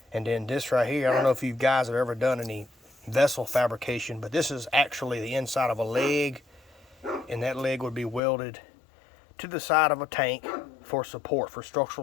And then this right here, I don't know if you guys have ever done any vessel fabrication, but this is actually the inside of a leg, and that leg would be welded to the side of a tank for support, for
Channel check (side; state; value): right; drops out; at 8.2 s